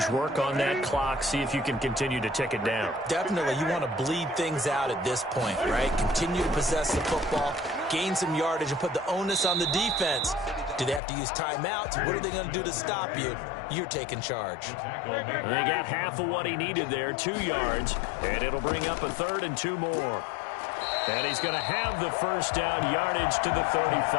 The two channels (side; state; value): right; drops out; at 11.0 s